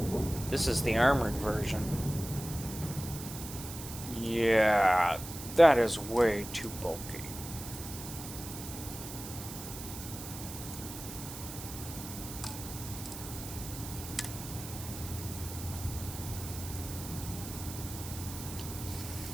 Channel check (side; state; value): right; noise; hiss, 10 dB below the sound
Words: This is the armored version. Yeah, that is way too bulky.